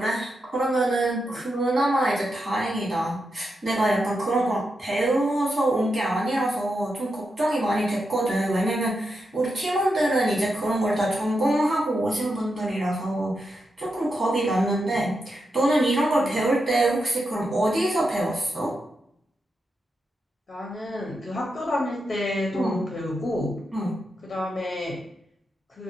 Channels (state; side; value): normal; both; correlation 0.86